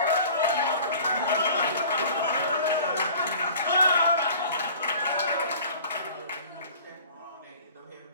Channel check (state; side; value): inverted; both; correlation -0.45